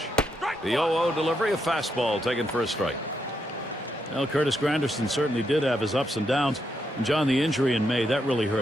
The 0-0 delivery, a fastball taken for a strike. Well, Curtis Granderson certainly did have his ups and downs. And John, the injury in May, that really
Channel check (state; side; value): normal; both; correlation 0.80